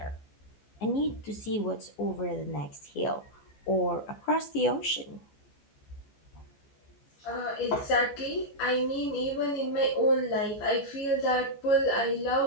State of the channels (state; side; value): late; right; 14 ms